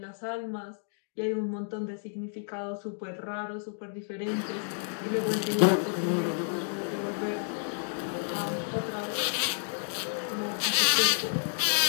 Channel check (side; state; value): right; silent; digital silence